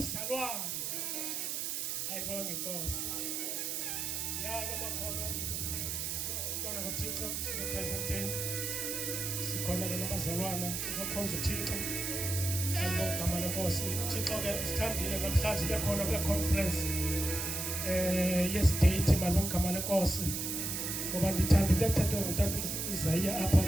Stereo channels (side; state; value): right; noise; hiss, 2 dB below the sound